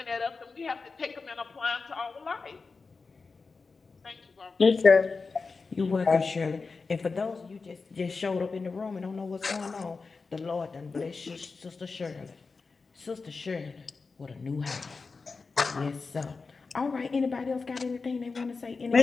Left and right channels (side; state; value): right; quieter; 4.4 dB